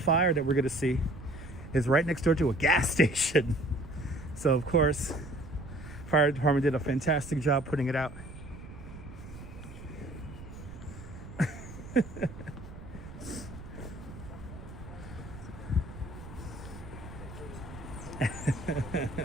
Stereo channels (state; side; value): noise; right; rumble, 13 dB below the sound